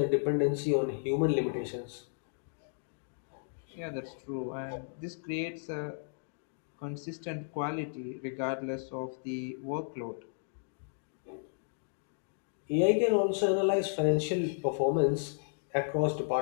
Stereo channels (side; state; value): right; silent; digital silence